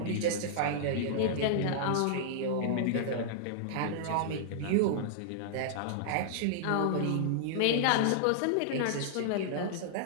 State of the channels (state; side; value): different; both; correlation -0.01